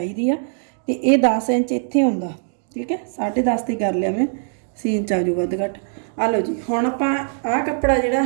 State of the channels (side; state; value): left; silent; digital silence